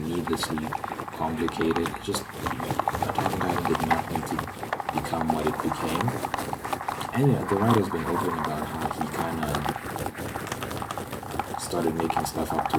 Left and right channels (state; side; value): identical; both; correlation 1.00